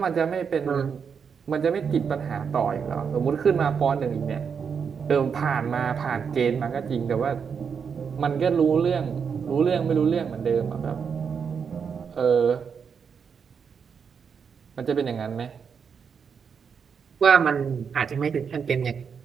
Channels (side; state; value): left; quieter; 6.5 dB